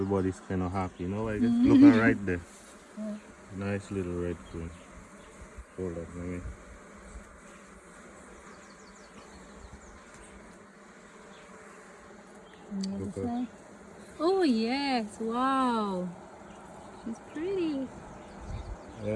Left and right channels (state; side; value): identical; both; correlation 1.00